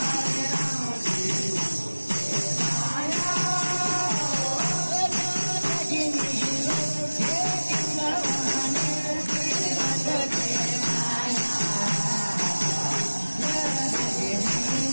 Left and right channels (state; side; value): inverted; both; correlation -1.00